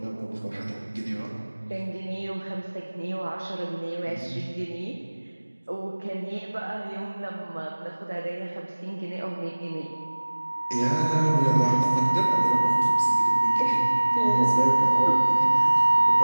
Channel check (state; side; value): inverted; both; correlation -1.00